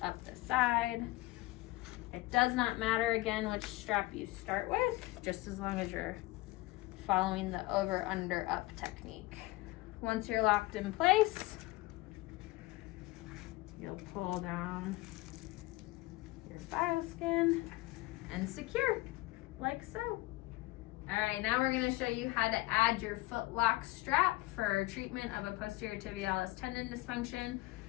up the side. It does not matter, again, which strap you start with, just as long as you're following the over, under, up technique. Once you're locked in place, you'll pull down your BioSkin and secure, like so. All right, now we're gonna show you how to add your foot lock strap for treatment of a posterior tibialis tendon dysfunction.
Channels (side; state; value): right; quieter; 19.9 dB